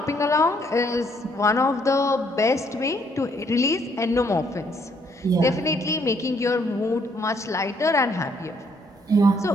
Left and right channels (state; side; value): normal; both; correlation 0.68